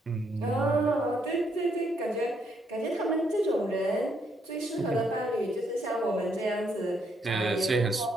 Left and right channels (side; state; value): both; normal; correlation 0.74